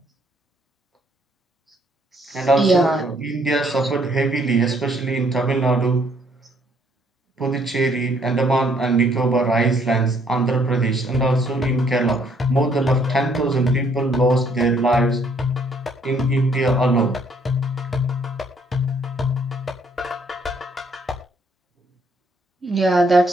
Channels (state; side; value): normal; both; correlation 0.66